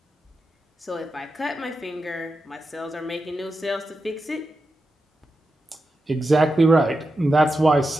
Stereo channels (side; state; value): both; normal; correlation 0.89